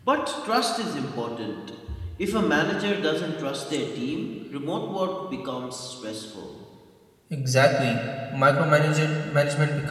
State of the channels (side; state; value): both; identical; correlation 1.00